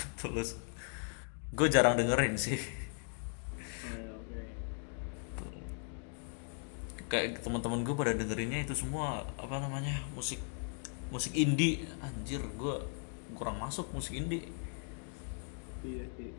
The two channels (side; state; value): right; silent; 53 dB below the other